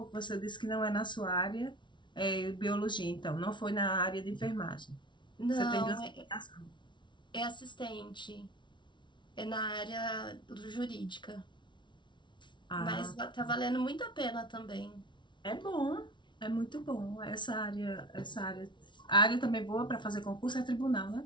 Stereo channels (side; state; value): right; late; 0.23 ms